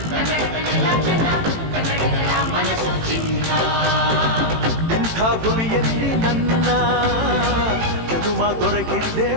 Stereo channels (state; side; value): late; left; 18 ms